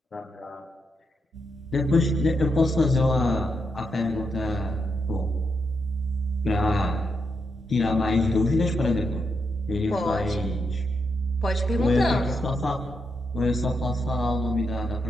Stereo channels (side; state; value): both; normal; correlation 0.82